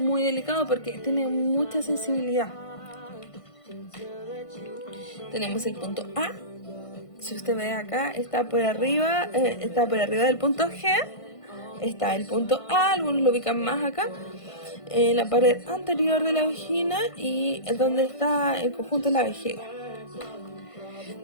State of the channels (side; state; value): right; late; 1.5 ms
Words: delicado porque tiene mucha sensibilidad. Tenemos el punto A. Si usted ve acá, está por arriba del punto G. Está el punto A, algunos lo ubican más acá, en la pared anterior de la vagina y donde está el conjunto de la vejiga.